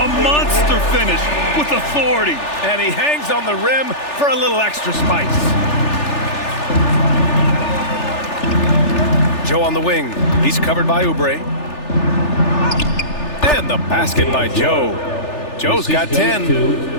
A monster finish with authority. And he hangs on the rim for a little extra spice. Joe on the wing. He's covered by Oubre. And the basket by Joe. Joe's got 10.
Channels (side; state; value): right; late; 3.4 ms